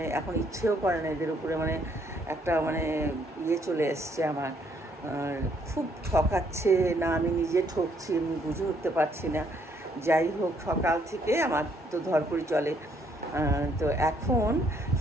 এখন ইচ্ছেও করে না এদের উপরে, মানে একটা মানে ইয়ে চলে এসছে আমার। খুব ঠকাচ্ছে না, আমি নিজে ঠকছি, আমি বুঝে উঠতে পারছি না। যাই হোক, সকাল থেকে আমার তো ধরপড়ি চলে। তো এখন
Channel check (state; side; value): normal; both; correlation 0.68